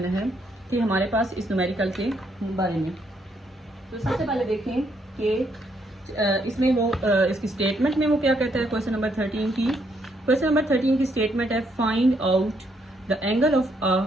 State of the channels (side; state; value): both; normal; correlation 0.73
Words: है कि हमारे पास इस न्यूमेरिकल के बारे में। तो सबसे पहले देखें कि इसमें वो इसकी स्टेटमेंट में वो क्या कहता है, क्वेश्चन नंबर 13 की। क्वेश्चन नंबर 13 की स्टेटमेंट है, find out the angle of a